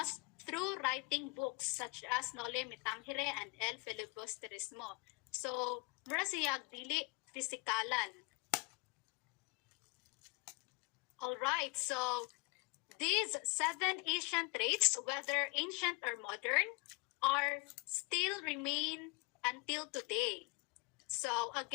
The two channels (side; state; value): right; quieter; 28.1 dB